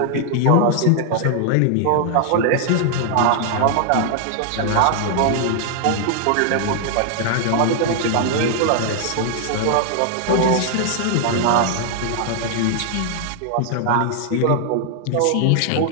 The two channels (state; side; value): different; both; correlation 0.00